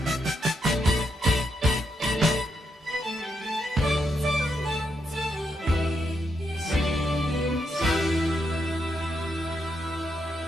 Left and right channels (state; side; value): normal; both; correlation 0.81